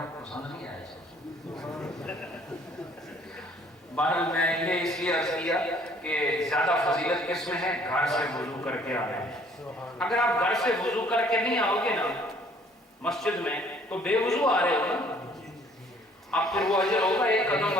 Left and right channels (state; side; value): normal; both; correlation 0.59